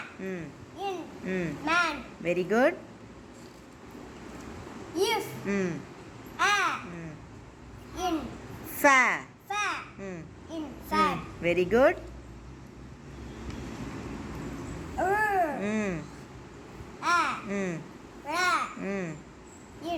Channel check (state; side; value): identical; both; correlation 1.00